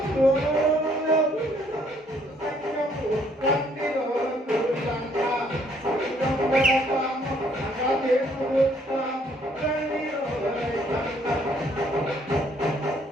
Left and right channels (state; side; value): normal; both; correlation 0.65